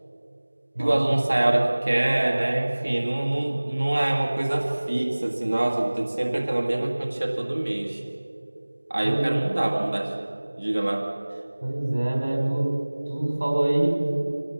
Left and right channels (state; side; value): inverted; both; correlation -1.00